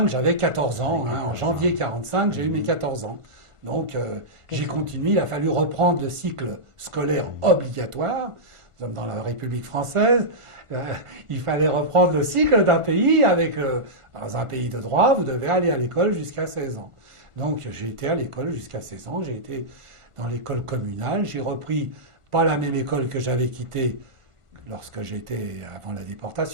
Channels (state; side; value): late; left; 1.5 ms